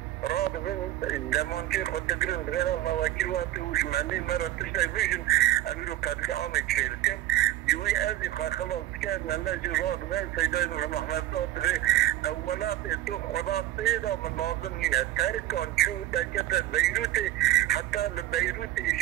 راد بن دمانچه خود دگرن بغیر الله وکیل وقتی وش منی مرا تشتای بیشن امیرو قدل عامه چیرکن جوی ازی خلاص کن الله جو راد بن سیدای محمد داد اولات دو خدا پیدا من لازم نینه ترکان چو دکت بیروت حتی بیروت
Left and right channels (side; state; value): left; quieter; 14.1 dB